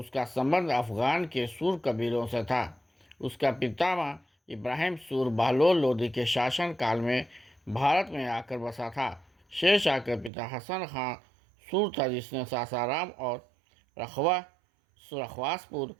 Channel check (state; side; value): drops out; left; at 10.3 s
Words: संबंध अफ़गान के सूर कबीलों से था। उसका पितामह इब्राहिम सूर बहलोल लोदी के शासनकाल में भारत में आकर बसा था। शेरशाह के पिता हसन खां सूर था, जिसने सासाराम और रखवासपुर